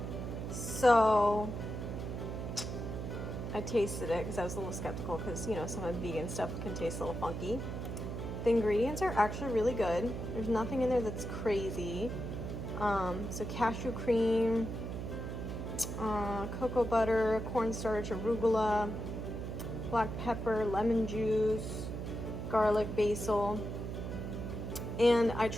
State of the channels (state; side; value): noise; right; hum, 5 dB below the sound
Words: So I tasted it because I was a little skeptical because, you know, some of the vegan stuff can taste a little funky. The ingredients are actually really good. There's nothing in there that's crazy. So cashew cream, cocoa butter, cornstarch, arugula, black pepper, lemon juice, garlic, basil. And I